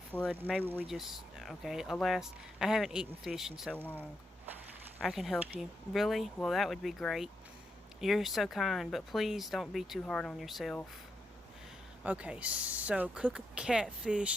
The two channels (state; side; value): normal; both; correlation 0.83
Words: Maybe we just... Okay, alas, I haven't eaten fish in so long. I can help you. Really? Well, that would be great. You're so kind, but please don't be too hard on yourself. Okay, so cook a